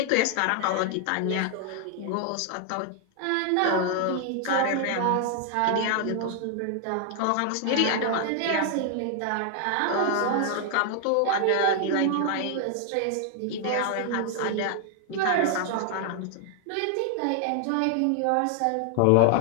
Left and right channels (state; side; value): different; both; correlation 0.00